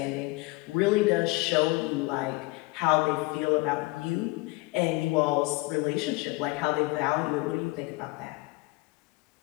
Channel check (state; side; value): quieter; right; 23.4 dB